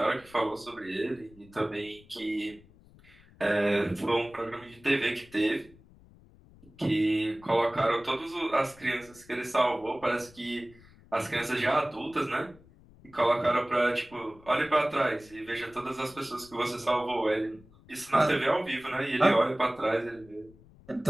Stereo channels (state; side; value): noise; left; rumble, 25 dB below the sound